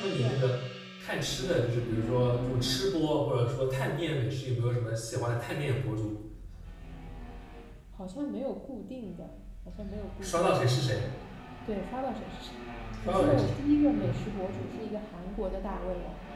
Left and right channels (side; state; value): both; identical; correlation 1.00